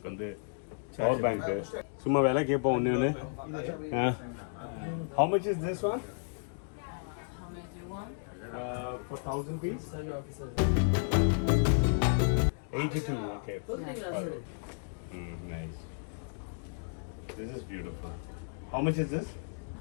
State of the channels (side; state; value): right; silent; digital silence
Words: வந்து பவர் பேங்க். சும்மா வேலை கேட்போம் ஒன்று ஒன்று. How much is this one? How many do you want? For 1000 piece? 82. Okay. Nice. This is beautiful. How much is this?